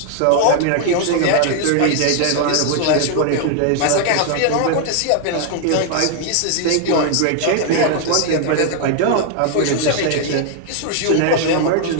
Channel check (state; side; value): different; both; correlation 0.00